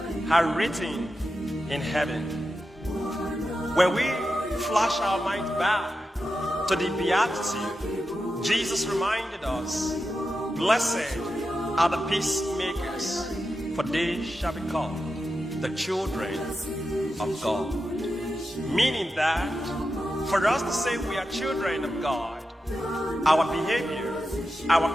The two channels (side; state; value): both; normal; correlation 0.90